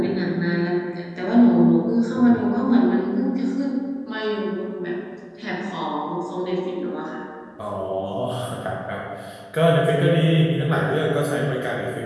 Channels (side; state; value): both; identical; correlation 1.00